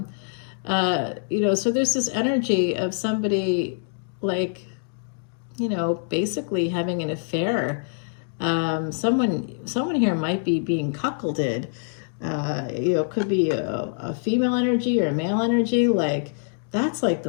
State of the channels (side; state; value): right; silent; digital silence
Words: You know, so there's this energy of somebody like, you know, basically having an affair. Someone here might be being cuckolded. You know, could be a female energy or a male energy. Like, that's like